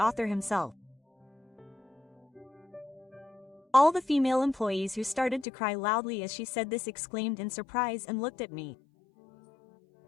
himself. All the female employees who started to cry loudly as she said this exclaimed in surprise and looked at me.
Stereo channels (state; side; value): drops out; right; at 5.5 s